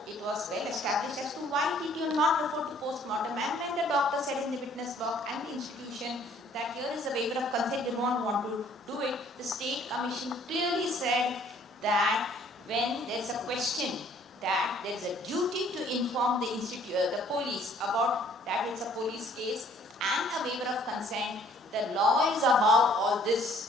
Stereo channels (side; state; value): both; normal; correlation 0.59